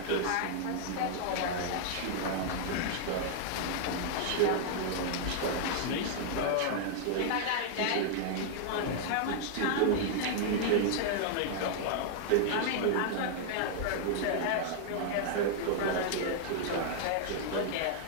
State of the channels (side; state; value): both; different; correlation -0.01